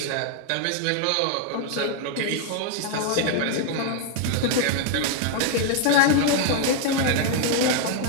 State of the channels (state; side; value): different; both; correlation 0.00